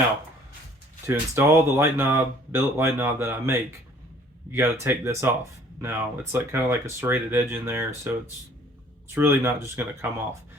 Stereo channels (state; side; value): normal; both; correlation 0.56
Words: to install the light knob, billet light knob that I make, you got to take this off. Now, it's like kind of like a serrated edge in there, so it's really not just going to come off.